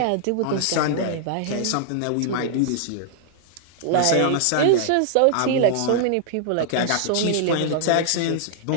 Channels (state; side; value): different; both; correlation -0.01